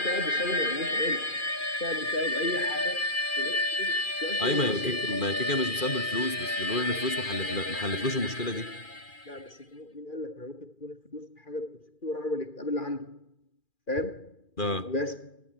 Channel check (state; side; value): late; right; 2.4 ms